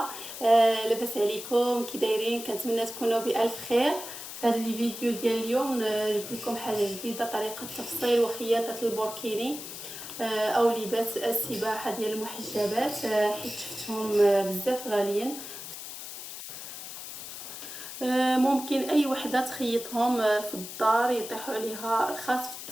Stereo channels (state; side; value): noise; left; hiss, 10 dB below the sound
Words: لاباس عليكم كي دايرين؟ كنتمنى تكونوا بالف خير. في هذا الفيديو ديال اليوم جبت لكم حاجه جديده، طريقه تفصيل وخياطه البوركيني او لباس السباحه ديال المحجبات، حيت شفتهم بزاف غاليين. ممكن اي وحده تخيطهم في الدار، يطيحوا عليها رخاص في